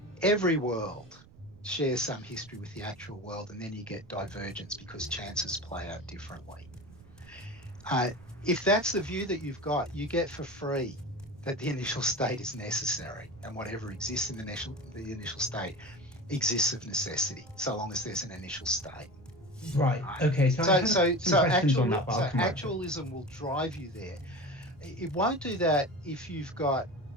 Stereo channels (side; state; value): right; noise; rumble, 22 dB below the sound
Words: every world shares some history with the actual world, and then you get divergence because chances play out differently. If that's the view that you've got, you get for free that the initial state is necessary, and whatever exists in the initial state exists of necessity, so long as there's an initial state. Right. Okay. So actualism will drive you there. It won't do that if you've got